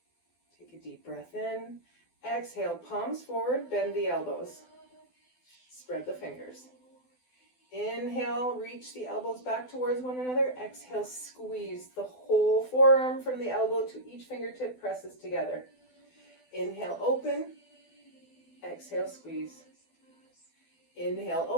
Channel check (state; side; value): late; right; 12 ms